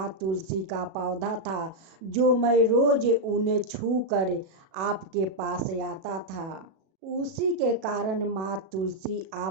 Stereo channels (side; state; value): left; late; 37 ms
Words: तुलसी का पौधा था, जो मैं रोज उन्हें छू कर आपके पास आता था। उसी के कारण माँ तुलसी